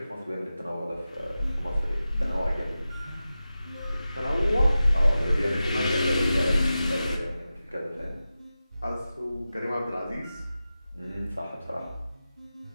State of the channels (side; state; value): both; inverted; correlation -0.93